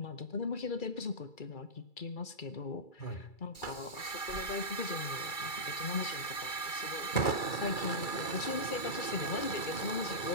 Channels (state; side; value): late; right; 2.3 ms